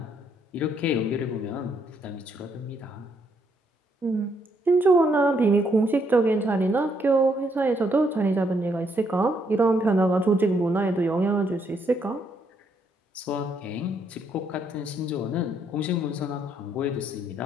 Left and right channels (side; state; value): both; normal; correlation 0.73